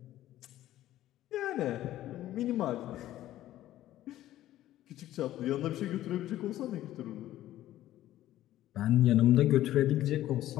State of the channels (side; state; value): right; quieter; 13.9 dB